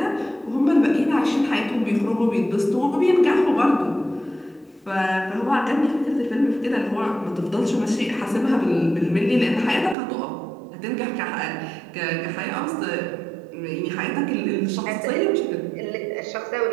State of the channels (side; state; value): left; drops out; at 10.0 s